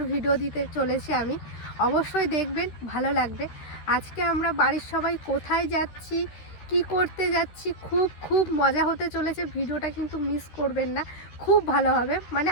ভিডিও দিতে চলেছি আমি। অবশ্যই দেখবেন, ভালো লাগবে। আজকে আমরা বাড়ির সবাই কোথায় যাচ্ছি, কি করতে যাচ্ছি, খুব মজা হতে চলেছে। ভিডিওটা কিন্তু মিস করবেন না, খুব ভালো হবে, মানে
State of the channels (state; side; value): late; right; 13 ms